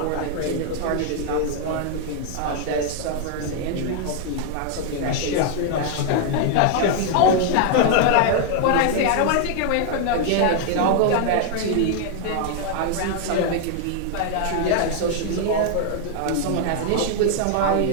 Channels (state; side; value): different; both; correlation 0.00